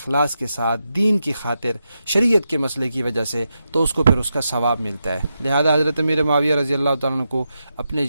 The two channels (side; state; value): both; inverted; correlation -0.87